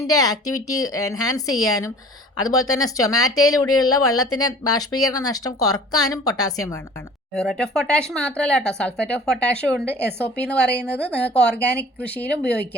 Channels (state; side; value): normal; both; correlation 0.46